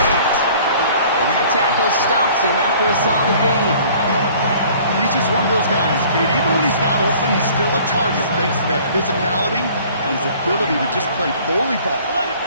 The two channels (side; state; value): both; inverted; correlation -0.52